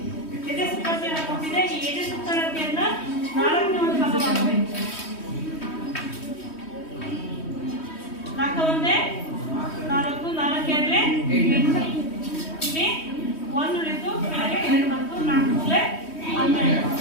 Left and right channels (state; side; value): late; right; 3.1 ms